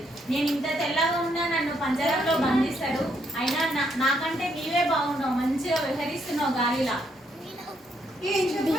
నేను ఇంత తెల్లగా ఉన్నా నన్ను పంజరంలో బంధిస్తాడు. అయినా నాకంటే నీవే బాగున్నావు, మంచిగా విహరిస్తున్నావు గాలిలా.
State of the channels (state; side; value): normal; both; correlation 0.74